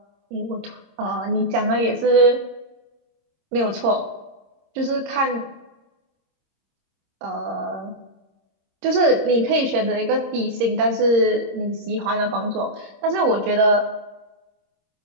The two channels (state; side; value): late; left; 26 ms